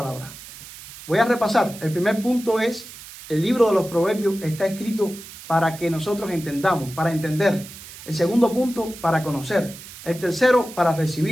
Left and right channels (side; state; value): right; noise; hiss, 16 dB below the sound